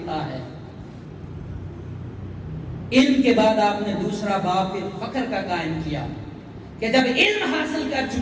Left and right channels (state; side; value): identical; both; correlation 1.00